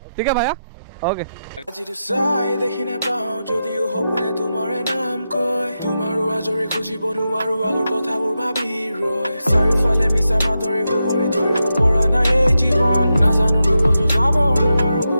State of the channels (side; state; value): both; inverted; correlation -0.88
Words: है भैया ओके। আজিটো চাই দেখি নাপাওঁ যদিও সপোনে তোমাৰে নাম কয়, তোমাৰো আজৰি খুজিব নোৱাৰো আগৰ কথাবোৰ ভাবি ৰয়। চাৰিওফালে মিছা মাতৰে সুহৰি ধৰিব পৰা নাই এই জীৱন, নাজানো দুবছৰ যাব নোৱাৰো